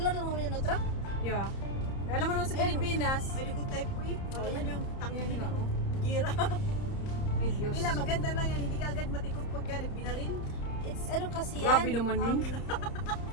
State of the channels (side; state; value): right; late; 30 ms